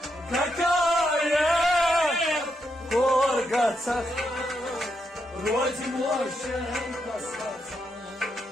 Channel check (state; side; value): normal; both; correlation 0.82